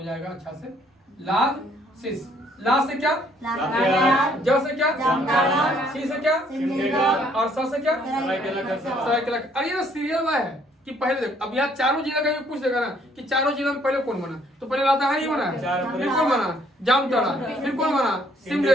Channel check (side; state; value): both; normal; correlation 0.64